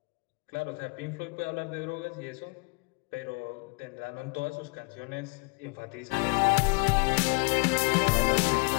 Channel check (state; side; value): quieter; right; 31.1 dB